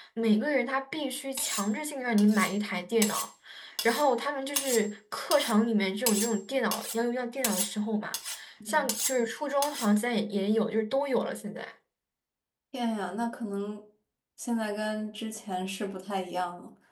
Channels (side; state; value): both; identical; correlation 1.00